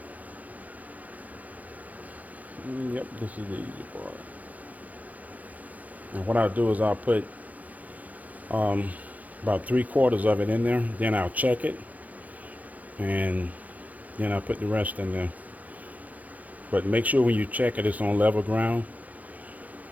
Yep, this is the easy part. And what I'll do is I'll put about 3/4 of it in there. Then I'll check it, and Then I put the rest in there. But make sure when you check it, it's on level ground,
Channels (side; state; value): left; late; 0.077 ms